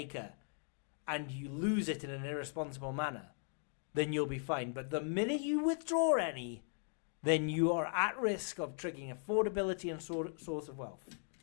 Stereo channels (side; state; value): right; silent; 52 dB below the other